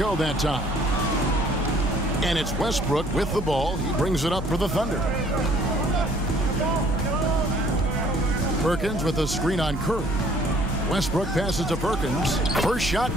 that time. And it's Westbrook with the ball. He brings it up for the Thunder. Perkins with a screen on Curry. Westbrook passes to Perkins. First shot,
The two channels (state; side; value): normal; both; correlation 0.58